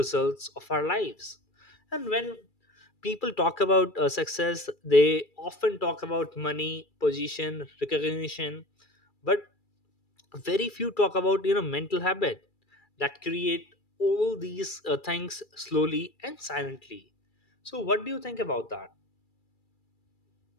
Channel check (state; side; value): late; right; 2.3 ms